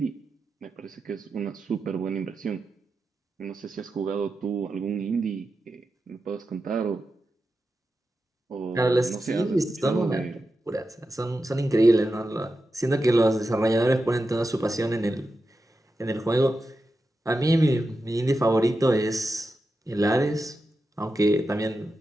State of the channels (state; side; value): normal; both; correlation 0.90